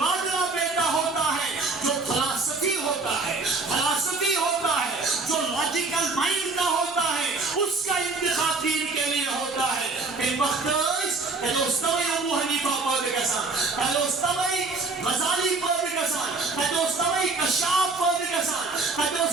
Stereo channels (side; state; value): left; quieter; 3.8 dB